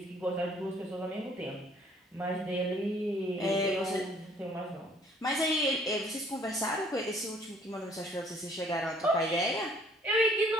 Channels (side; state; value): both; normal; correlation 0.60